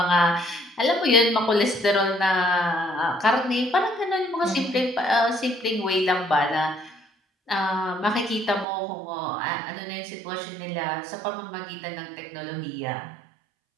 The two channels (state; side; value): drops out; left; at 8.7 s